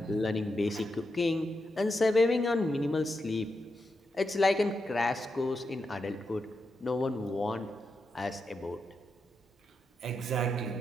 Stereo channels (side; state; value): both; normal; correlation 0.86